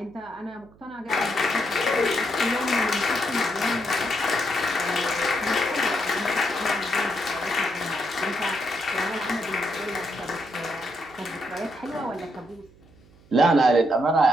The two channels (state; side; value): noise; right; hum, 27 dB below the sound